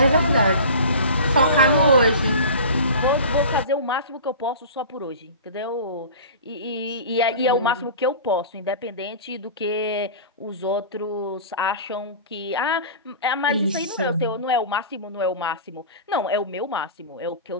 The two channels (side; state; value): both; inverted; correlation -0.35